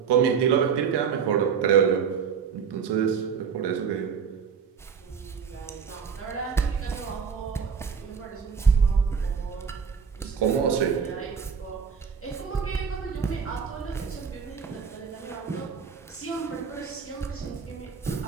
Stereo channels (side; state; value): left; quieter; 6.5 dB